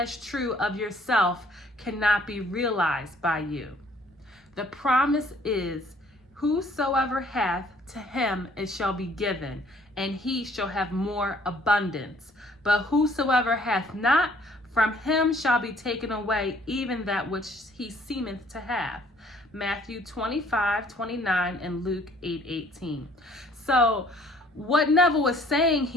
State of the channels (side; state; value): both; normal; correlation 0.59